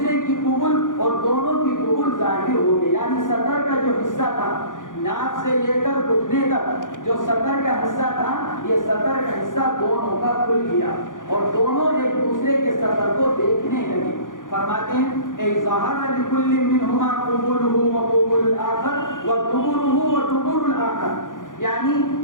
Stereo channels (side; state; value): right; late; 0.88 ms